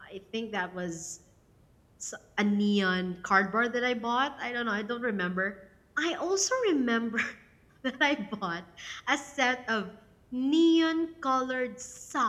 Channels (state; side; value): identical; both; correlation 1.00